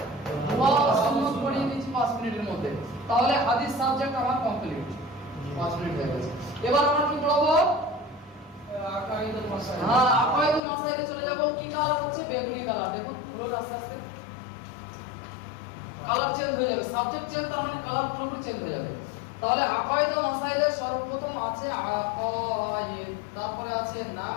দোয়া সুন্নাত পড়িয়ে দিচ্ছি 5 মিনিটের মধ্যে। তাহলে হাদিস সাবজেক্ট আমার কমপ্লিট, 5 মিনিট হয়ে গেছে। এবার আমরা কি পড়াবো? আকাইদুল মাসাইল। হ্যাঁ, আকাইদুল মাসাইলে চলে যাব। কি কালার হচ্ছে? বেগুনি কালার। দেখুন পুরো আস্তে আস্তে কালার চেঞ্জ হয়ে যাবে। সাবজেক্ট চেঞ্জ, তার মানে কালার পুরোপুরি চেঞ্জ হয়ে যাবে। তাহলে আকাইদুল মাসাইলে সর্বপ্রথম আছে আকাইদ, তারপরে আছে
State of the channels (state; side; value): drops out; right; at 10.6 s